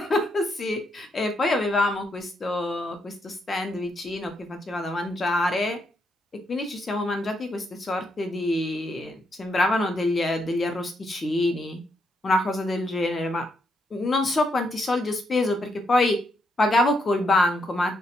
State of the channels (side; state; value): both; normal; correlation 0.78